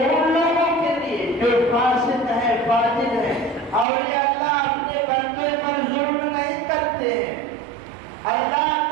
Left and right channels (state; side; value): drops out; left; at 3.9 s